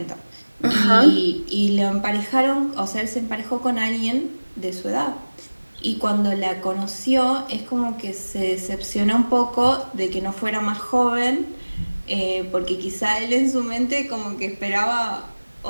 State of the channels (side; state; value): both; inverted; correlation -1.00